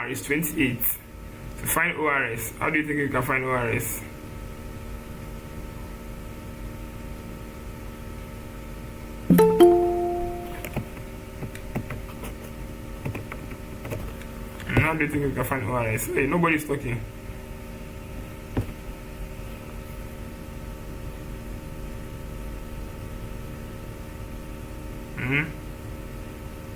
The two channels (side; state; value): both; identical; correlation 1.00